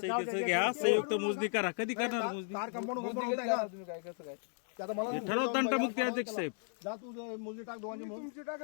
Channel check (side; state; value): right; silent; 54 dB below the other